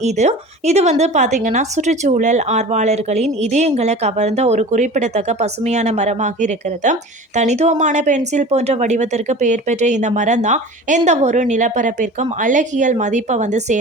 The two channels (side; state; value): both; normal; correlation 0.38